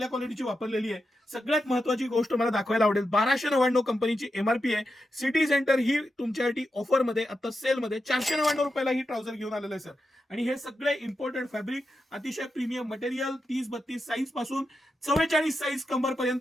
क्वालिटीची वापरलेली आहे. सगळ्यात महत्वाची गोष्ट मला दाखवायला आवडेल, 1299 कंपनीची एमआरपी आहे. सिटी सेंटर ही तुमच्यासाठी ऑफर मध्ये आता सेल मध्ये 499 रुपयाला ही ट्राउझर घेऊन आलेलं आहे सर. आणि हे सगळे इम्पोर्टेड फॅब्रिक, अतिशय प्रीमियम मटेरियल, 30-32 साईज पासून 44 साईज कंबर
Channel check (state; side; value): normal; both; correlation 0.88